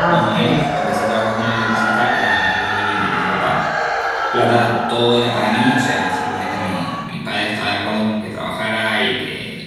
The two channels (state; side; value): identical; both; correlation 1.00